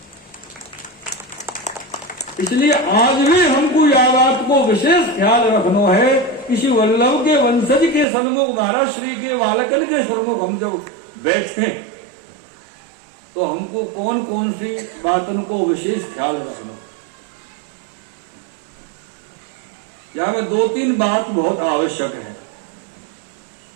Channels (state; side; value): drops out; left; at 8.1 s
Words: इसलिए आज भी हमको यह बात को विशेष ख्याल रखना है कि श्री वल्लभ के वंशज के सन्मुख महाराज श्री के बालकन के सन्मुख हम जब बैठे तो हमको कौन कौन सी बातों को विशेष ख्याल रखना। यहां में 2-3 बात बहुत आवश्यक है।